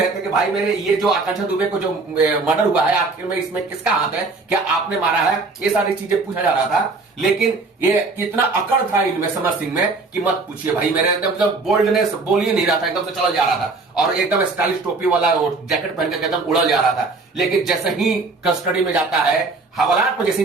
थे कि भाई मेरे ये जो आकांक्षा दुबे को जो मर्डर हुआ है, आखिर में इसमें किसका हाथ है, क्या आपने मारा है, ये सारी चीजें पूछा जा रहा था। लेकिन ये कितना अकड़ था इनमें समर सिंह में कि मत पूछिए भाई, मेरे एकदम बोल्डनेस बोल ही नहीं रहा था, एकदम से चला जा रहा था और एकदम स्टाइलिश टोपी वाला जैकेट पहन के एकदम उड़ा जा रहा था। लेकिन जैसे ही कस्टडी में जाता है, हवालात में जैसे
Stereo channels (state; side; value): quieter; left; 3.8 dB